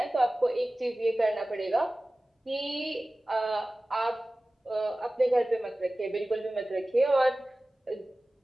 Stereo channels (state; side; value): normal; both; correlation 0.97